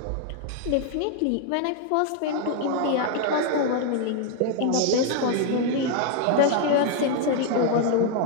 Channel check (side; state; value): both; different; correlation 0.00